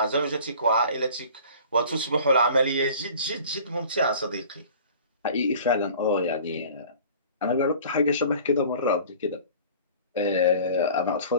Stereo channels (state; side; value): inverted; both; correlation -0.45